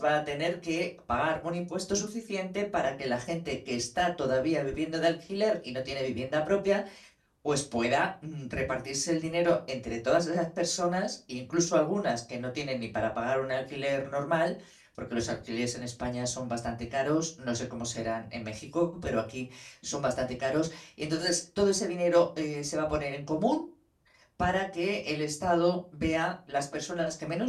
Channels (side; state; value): both; identical; correlation 1.00